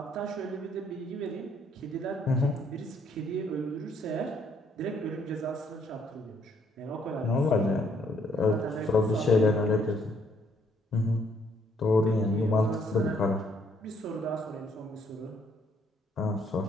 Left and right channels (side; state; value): both; normal; correlation 0.68